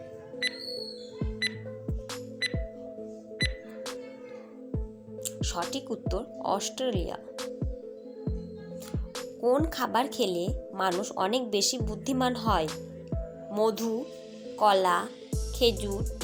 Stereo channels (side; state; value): both; identical; correlation 1.00